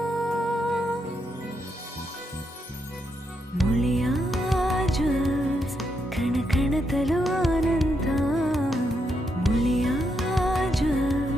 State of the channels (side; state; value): both; normal; correlation 0.81